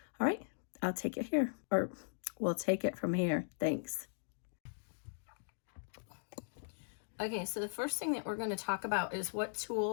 All right, I'll take it here, or we'll take it from here. Thanks. Okay, so the first thing that we're going to talk about is what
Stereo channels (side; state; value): right; silent; digital silence